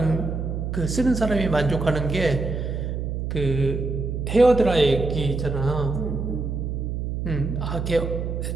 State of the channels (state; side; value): noise; right; hum, 3 dB below the sound